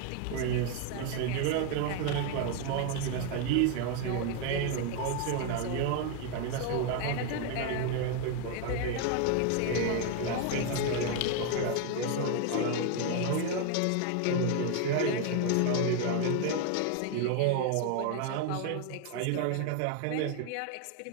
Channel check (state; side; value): different; both; correlation 0.01